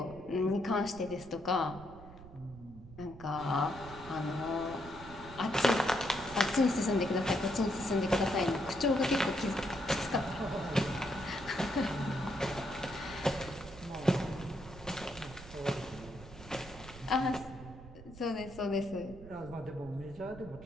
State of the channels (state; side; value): noise; right; rumble, 16 dB below the sound